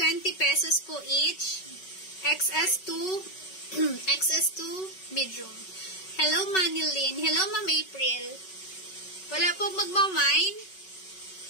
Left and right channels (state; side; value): late; right; 5.3 ms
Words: pesos po each. XS2, XS2 medium. Hello, Manilyn. Hello, Ma'am April. Wala po magmamine.